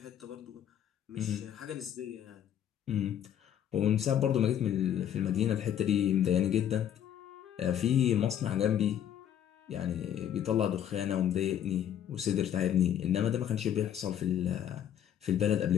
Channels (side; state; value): right; quieter; 10.1 dB